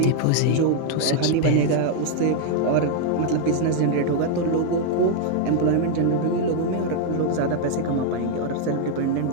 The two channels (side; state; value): both; different; correlation 0.00